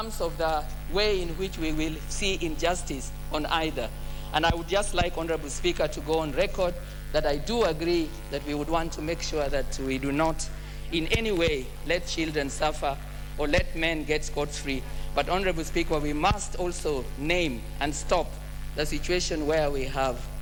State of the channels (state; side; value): identical; both; correlation 1.00